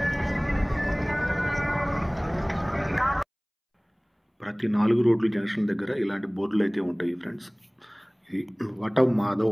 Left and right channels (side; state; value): both; identical; correlation 1.00